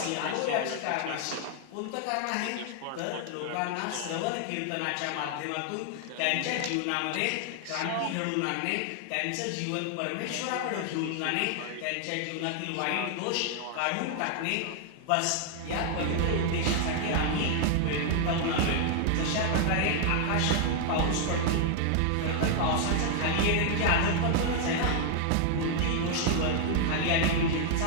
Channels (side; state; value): both; different; correlation 0.00